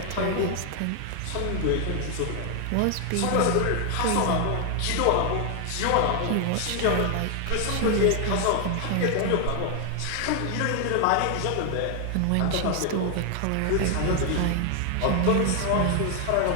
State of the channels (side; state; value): both; different; correlation 0.00